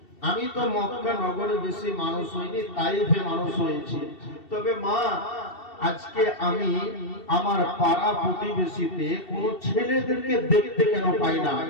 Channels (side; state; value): right; late; 2.7 ms